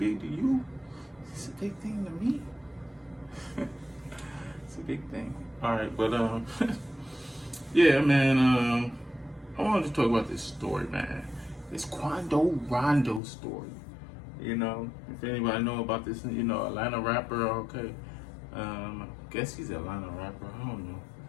to you. It's a big thing to me. It's a big thing. All right, but yeah, man. I wanted to talk about this story, man. This Quando Rondo story. If anybody know about this, Atlanta rapper. Okay, I guess he's an Atlanta rapper. I don't know.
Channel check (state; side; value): drops out; right; at 13.2 s